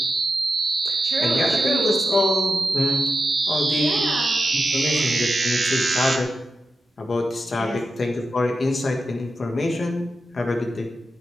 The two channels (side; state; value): both; normal; correlation 0.89